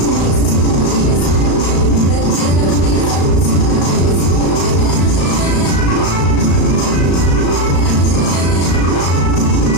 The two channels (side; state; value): right; late; 35 ms